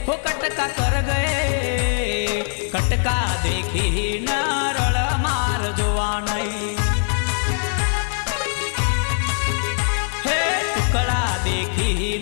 हो कटका कर गए कटका देखी न रड़ मार जुआ नहीं।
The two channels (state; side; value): silent; right; digital silence